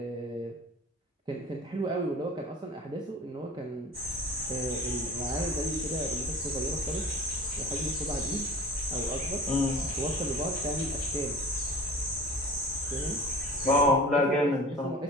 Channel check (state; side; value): normal; both; correlation 0.40